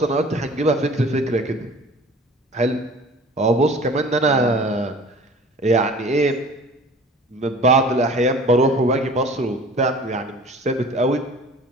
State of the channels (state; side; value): normal; both; correlation 0.45